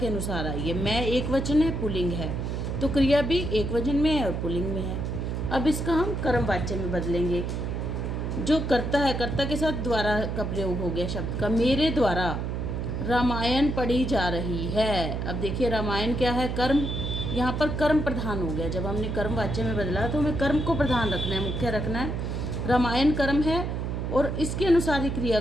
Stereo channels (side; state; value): right; noise; hum, 2 dB below the sound